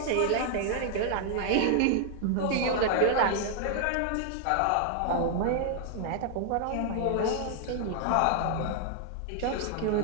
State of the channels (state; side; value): different; both; correlation -0.01